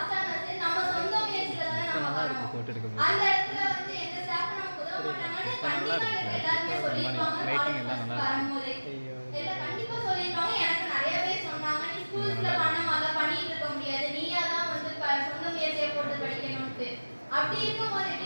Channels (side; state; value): both; inverted; correlation -1.00